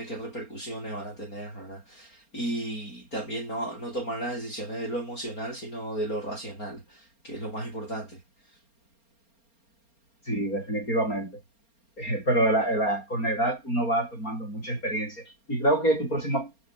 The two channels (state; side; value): late; right; 4.3 ms